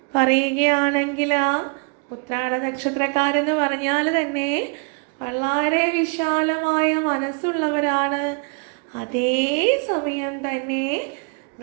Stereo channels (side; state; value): left; quieter; 35.4 dB